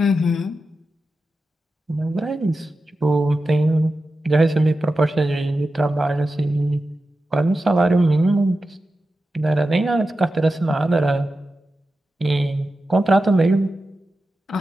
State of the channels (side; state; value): both; normal; correlation 0.92